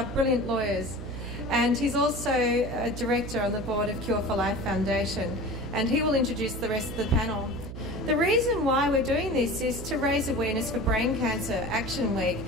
brilliant lawyers. And he's also a director on the board of Cure for Life Foundation. And he will introduce the rest of the panel. The reason why we're doing this is to raise awareness for Brain Cancer Action Week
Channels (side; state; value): right; noise; hum, 9 dB below the sound